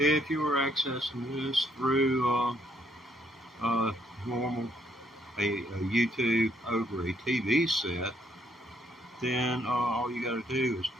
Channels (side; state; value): both; normal; correlation 0.70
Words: you are accessing this through normal a YouTube over a TV set, then all you got to do is